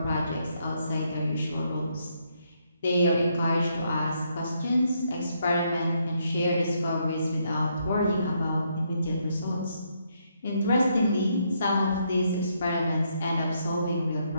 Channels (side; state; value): both; inverted; correlation -0.75